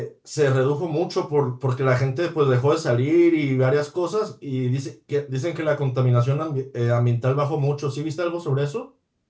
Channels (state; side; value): identical; both; correlation 1.00